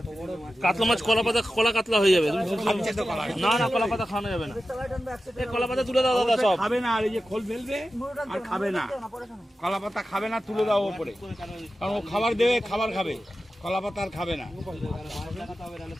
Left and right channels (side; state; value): both; normal; correlation 0.93